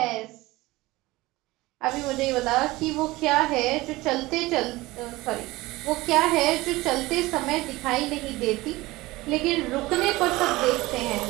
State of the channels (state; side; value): quieter; left; 19.9 dB